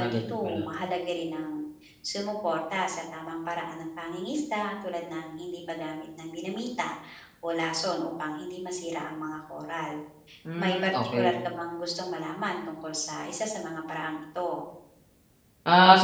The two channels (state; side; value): identical; both; correlation 1.00